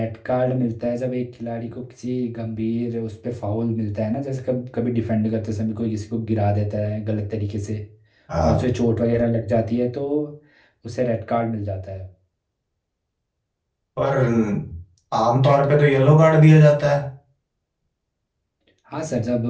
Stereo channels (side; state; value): both; identical; correlation 1.00